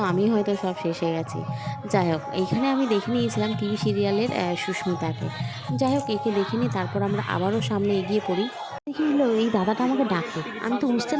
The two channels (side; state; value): both; identical; correlation 1.00